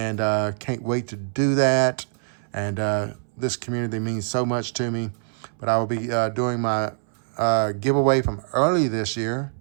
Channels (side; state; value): left; silent; 62 dB below the other